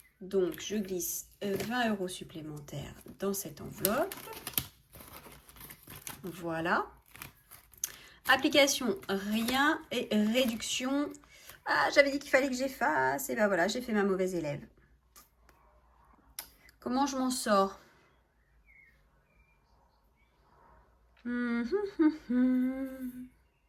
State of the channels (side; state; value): both; identical; correlation 1.00